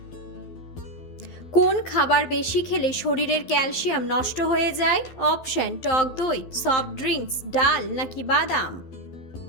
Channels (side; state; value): right; late; 11 ms